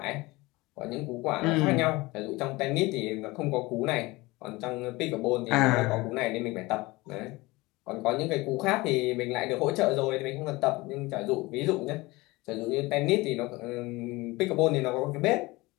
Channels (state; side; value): quieter; right; 21.8 dB